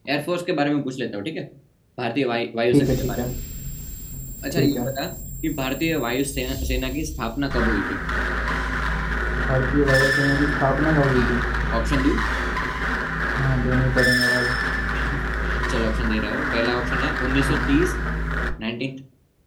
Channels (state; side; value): identical; both; correlation 1.00